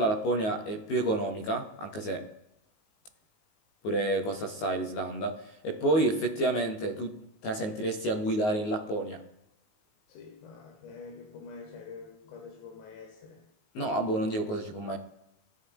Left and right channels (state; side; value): late; right; 19 ms